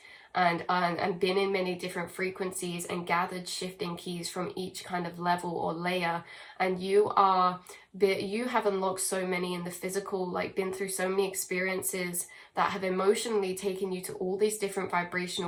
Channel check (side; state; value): both; identical; correlation 1.00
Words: and been in many different frequencies and gathered shifting keys from each kind of level or layer, and you have unlocked so many in the physical, like been through so many experiences that have emotionally taken you to all these different